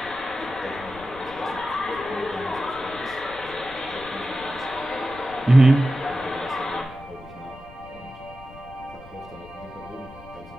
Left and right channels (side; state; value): left; noise; rumble, 18 dB below the sound